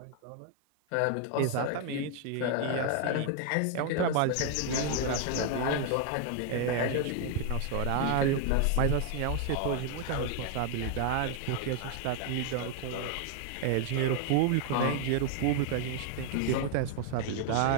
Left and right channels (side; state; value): both; different; correlation 0.00